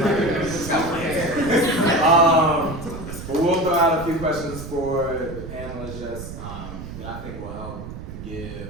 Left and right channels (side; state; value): right; noise; rumble, 10 dB below the sound